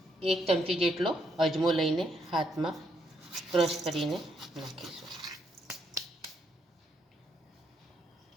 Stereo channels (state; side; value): normal; both; correlation 0.75